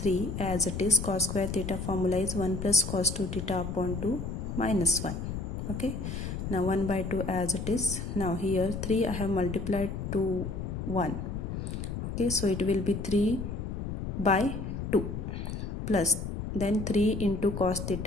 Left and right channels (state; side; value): noise; left; rumble, 5 dB below the sound